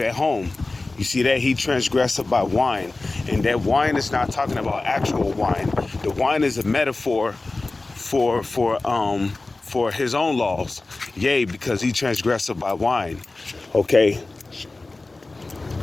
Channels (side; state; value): right; quieter; 3.3 dB